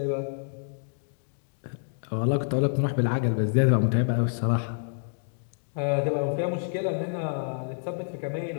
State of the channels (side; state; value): right; silent; digital silence